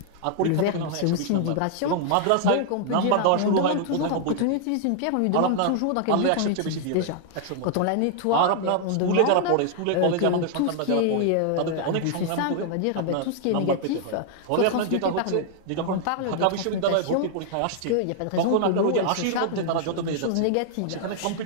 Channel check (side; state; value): both; different; correlation 0.00